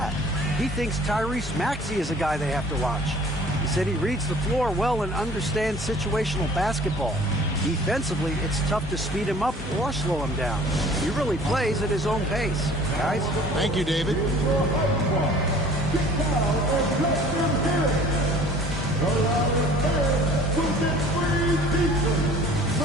He thinks Tyrese Maxey is a guy they have to watch. He said he reads the floor well and understands situational basketball. Defensively, it's tough to speed him up or slow him down. He really plays at his own pace. Guys? Thank you, David.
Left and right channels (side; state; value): both; normal; correlation 0.50